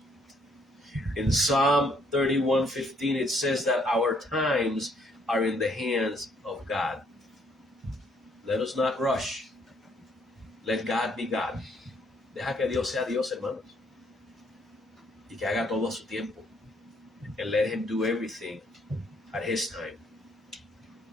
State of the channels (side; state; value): both; normal; correlation 0.68